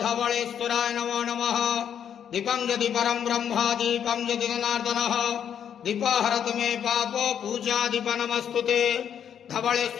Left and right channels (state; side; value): quieter; right; 8.7 dB